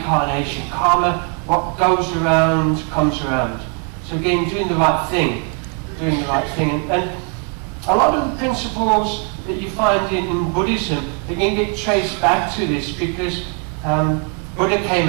karma. What goes around comes around. So again, doing the right thing, and a lot of the principles that you find in Buddhism, they can get traced back to this because Buddha came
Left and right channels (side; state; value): left; quieter; 38.6 dB